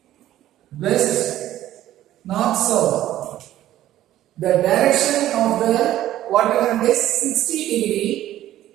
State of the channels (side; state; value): left; quieter; 13.4 dB